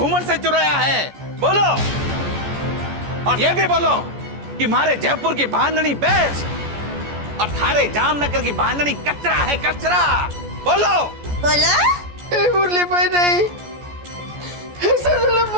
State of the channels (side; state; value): left; late; 14 ms